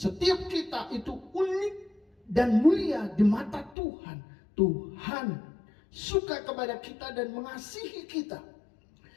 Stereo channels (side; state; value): right; drops out; at 3.8 s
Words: kita itu unik dan mulia di mata Tuhan. Tuhan suka kepada kita dan mengasihi kita,